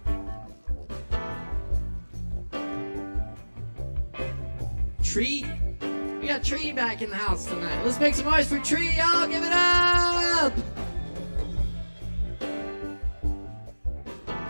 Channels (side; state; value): both; inverted; correlation -1.00